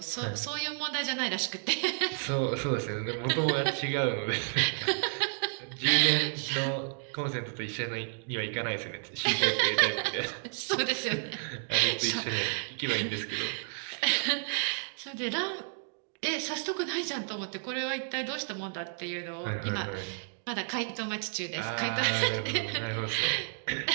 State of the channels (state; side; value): silent; left; digital silence